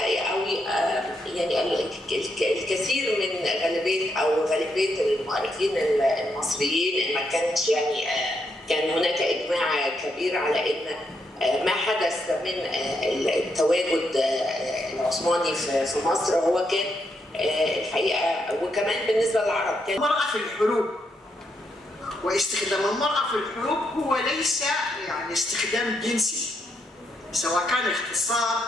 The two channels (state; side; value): normal; both; correlation 0.79